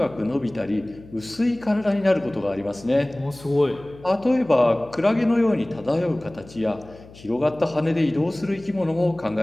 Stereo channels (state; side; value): noise; left; hum, 21 dB below the sound